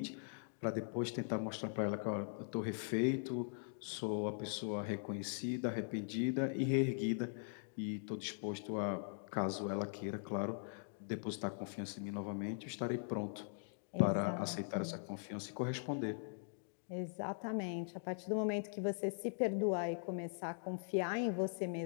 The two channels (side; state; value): right; silent; digital silence